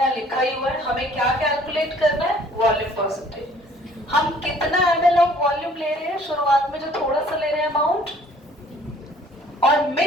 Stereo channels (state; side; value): normal; both; correlation 0.56